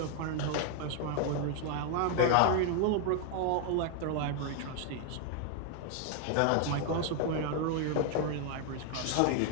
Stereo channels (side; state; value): both; different; correlation 0.00